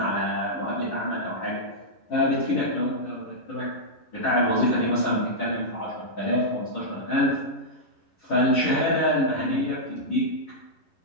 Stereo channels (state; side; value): late; right; 11 ms